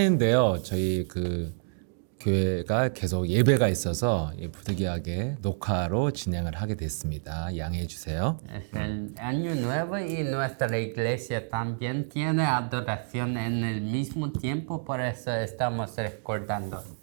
저희 교회가 계속 예배가 있어서 부득이하게 녹화로 진행을 하게 됐습니다. 양해해 주세요. Es el año nuevo y nuestra iglesia también tiene adoración en el mismo tiempo, por eso estamos recordando.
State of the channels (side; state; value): left; silent; digital silence